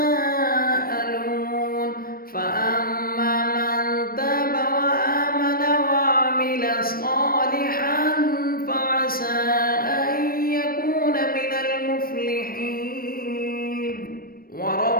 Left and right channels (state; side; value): late; right; 0.43 ms